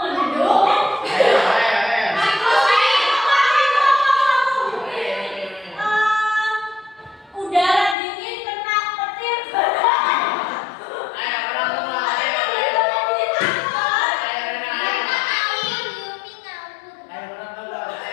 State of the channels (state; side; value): drops out; right; at 8.0 s